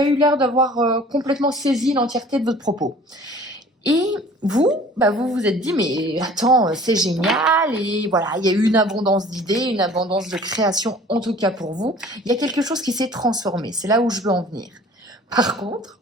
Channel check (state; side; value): normal; both; correlation 0.49